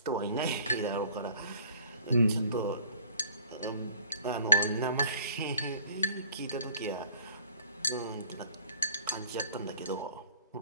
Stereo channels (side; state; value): both; inverted; correlation -0.53